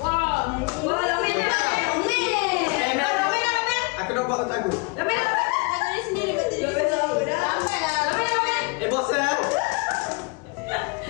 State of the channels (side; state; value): right; quieter; 29.6 dB